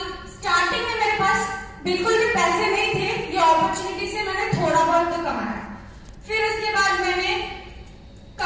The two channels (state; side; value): identical; both; correlation 1.00